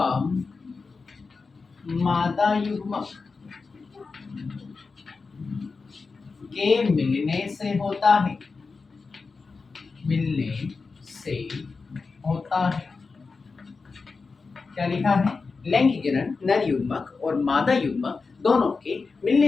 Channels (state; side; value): quieter; right; 4.5 dB